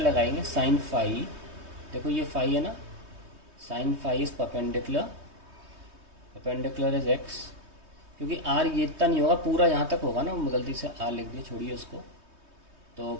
साइन फाई। देखो ये फाई है ना, sine phi is perpendicular, perpendicular is x। क्योंकि r ये इतना नहीं होगा, पूरा यहाँ तक होगा ना, गलती से r लिख दिया, छोड़िए उसको। तो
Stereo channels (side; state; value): left; late; 3.2 ms